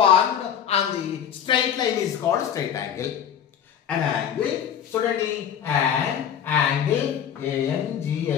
on the straight line is called straight angle. An angle, చూడండి, an angle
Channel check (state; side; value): quieter; right; 8.8 dB